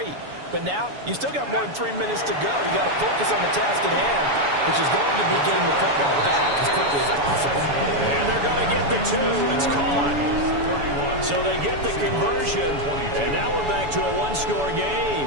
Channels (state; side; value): late; left; 7.0 ms